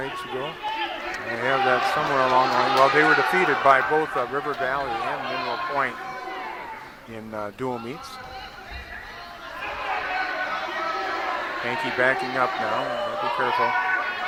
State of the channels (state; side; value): identical; both; correlation 1.00